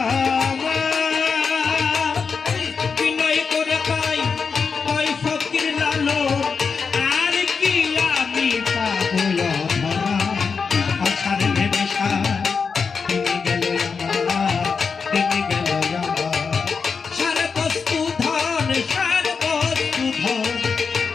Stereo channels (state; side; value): quieter; right; 5.4 dB